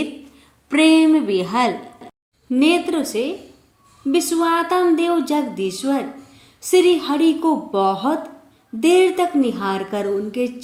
प्रेम विहल नेत्र से विश्वात्म देव जगदीश्वर श्री हरि को बहुत देर तक निहार कर उनके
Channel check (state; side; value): identical; both; correlation 1.00